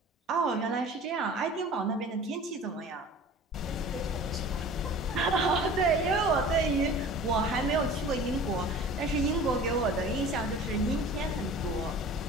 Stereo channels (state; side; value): normal; both; correlation 0.42